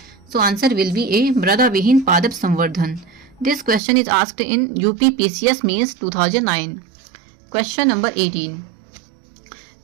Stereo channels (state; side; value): drops out; left; at 3.8 s